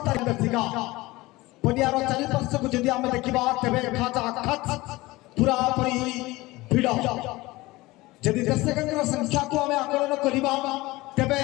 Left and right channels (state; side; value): quieter; right; 20.2 dB